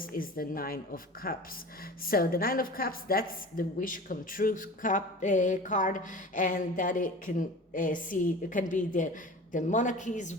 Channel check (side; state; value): both; normal; correlation 0.37